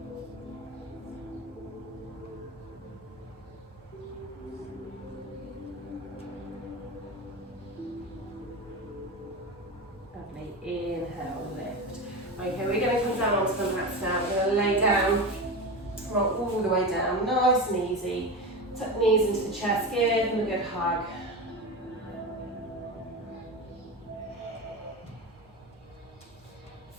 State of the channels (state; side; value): normal; both; correlation 0.23